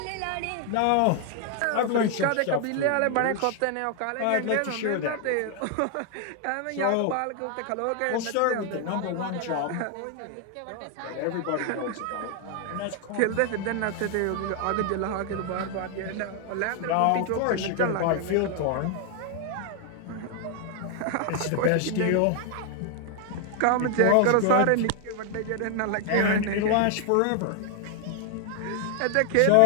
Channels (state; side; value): different; both; correlation 0.00